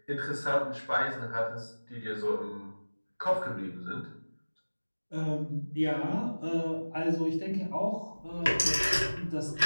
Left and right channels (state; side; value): inverted; both; correlation -1.00